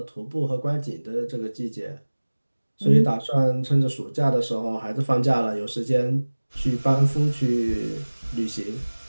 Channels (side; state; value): both; inverted; correlation -1.00